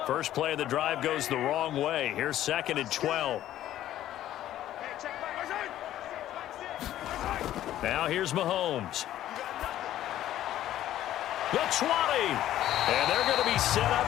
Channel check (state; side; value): quieter; right; 12.8 dB